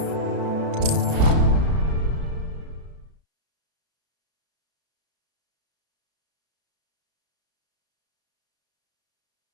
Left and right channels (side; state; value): left; late; 32 ms